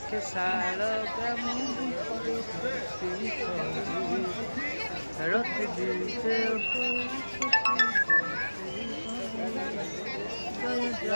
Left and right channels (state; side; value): inverted; both; correlation -1.00